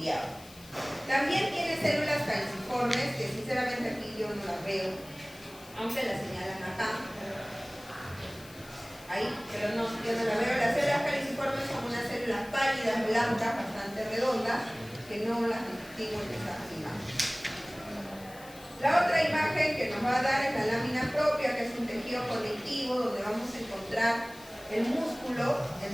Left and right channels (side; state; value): left; noise; hiss, 20 dB below the sound